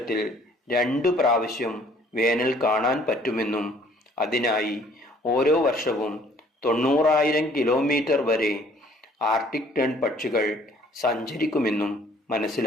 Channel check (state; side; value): normal; both; correlation 0.58